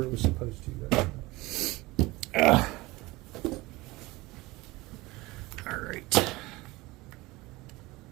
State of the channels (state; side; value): quieter; left; 21.1 dB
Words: it was supposed to. All right.